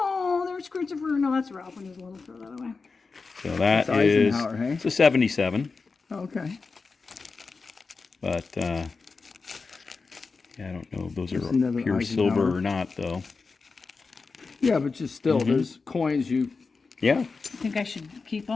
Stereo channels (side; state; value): right; quieter; 4.4 dB